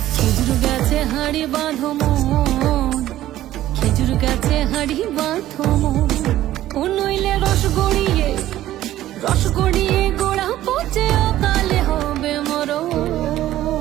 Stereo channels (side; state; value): left; quieter; 13.9 dB